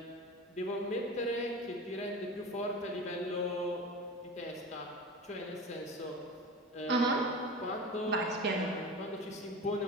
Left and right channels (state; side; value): normal; both; correlation 0.31